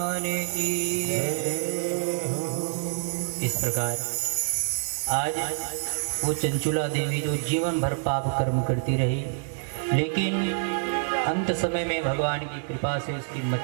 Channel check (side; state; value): left; silent; digital silence